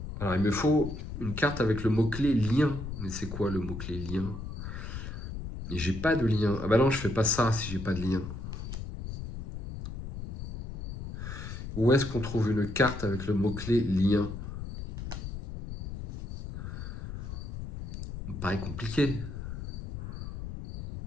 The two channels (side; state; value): left; noise; rumble, 7 dB below the sound